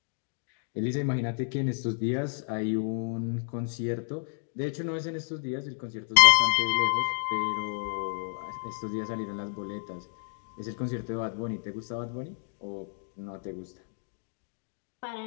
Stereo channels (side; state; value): right; silent; digital silence